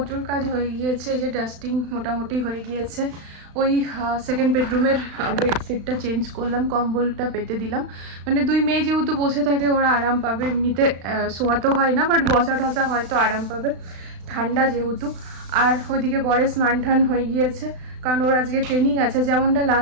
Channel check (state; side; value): late; left; 35 ms